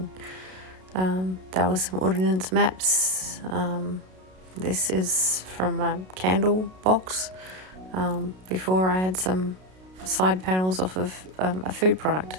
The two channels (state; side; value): late; left; 32 ms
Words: There were some ordnance maps. This is from a candle box. Before I had some side panels off of a food